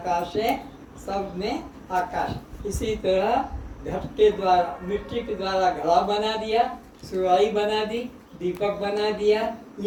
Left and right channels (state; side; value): identical; both; correlation 1.00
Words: है, सब में आकाश। इसी तरह घट के द्वारा, मिट्टी के द्वारा घड़ा बना दिया, सुराही बना दी, दीपक बना दिया,